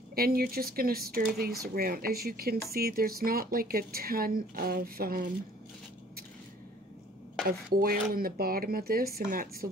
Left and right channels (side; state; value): both; normal; correlation 0.54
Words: And you're just going to stir these around. As you can see, there's not like a ton of oil in the bottom of this, and that's the